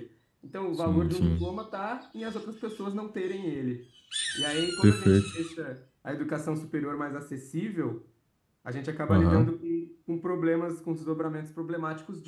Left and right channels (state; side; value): identical; both; correlation 1.00